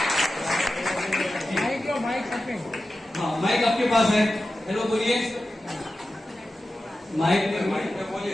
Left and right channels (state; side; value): normal; both; correlation 0.93